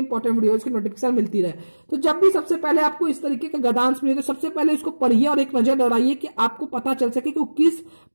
वीडियोस की नोटिफिकेशन मिलती रहे। तो जब भी सबसे पहले आपको इस तरीके का गद्यांश मिले तो सबसे पहले इसको पढ़िए और एक नजर दौड़ाइए कि आपको पता चल सके कि वो किस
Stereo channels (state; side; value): inverted; both; correlation -1.00